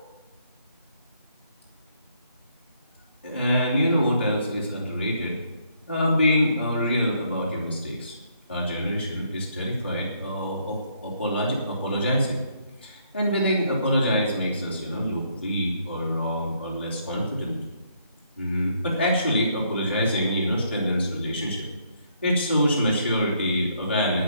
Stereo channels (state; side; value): inverted; both; correlation -0.71